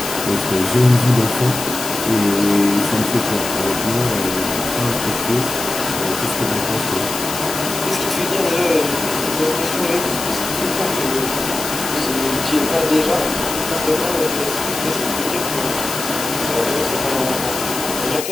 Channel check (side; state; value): left; noise; hiss, 6 dB below the sound